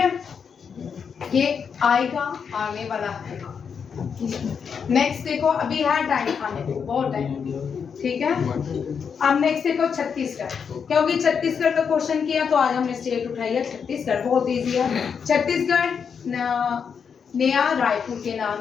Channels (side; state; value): right; quieter; 6.6 dB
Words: ये आएगा, आने वाला है। नेक्स्ट देखो, अभी है टाइम खाने को, बहुत टाइम, ठीक है। अब नेक्स्ट देखो छत्तीसगढ़, क्योंकि छत्तीसगढ़ का क्वेश्चन किया तो आज हमने स्टेट उठाई है छत्तीसगढ़, बहुत इजी है। छत्तीसगढ़ नया रायपुर के नाम,